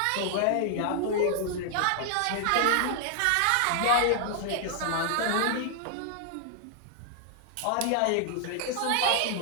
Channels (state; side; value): different; both; correlation 0.00